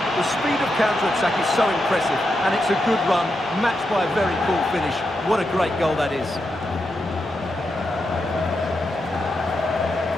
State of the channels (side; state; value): both; normal; correlation 0.85